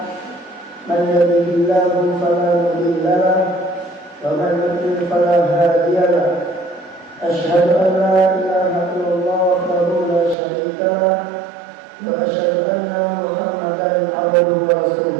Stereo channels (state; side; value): drops out; left; at 10.4 s